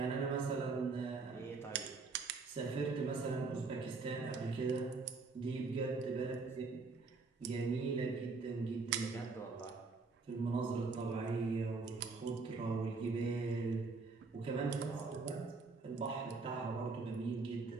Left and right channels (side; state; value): left; quieter; 4.1 dB